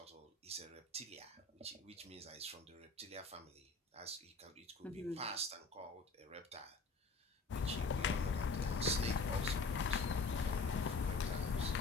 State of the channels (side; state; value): right; quieter; 3.9 dB